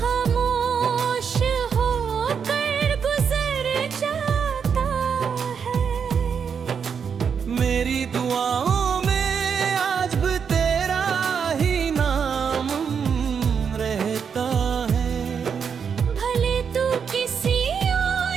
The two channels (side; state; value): left; quieter; 6.7 dB